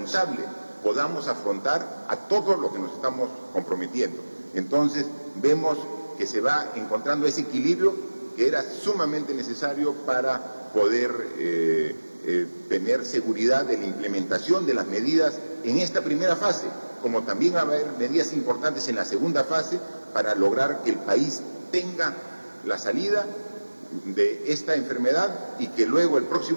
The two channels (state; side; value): inverted; both; correlation -1.00